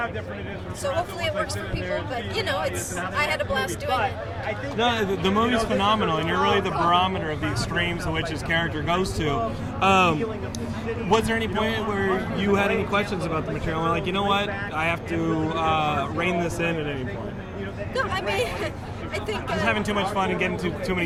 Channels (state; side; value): identical; both; correlation 1.00